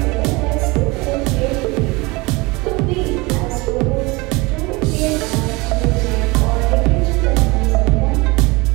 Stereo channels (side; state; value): left; quieter; 24.4 dB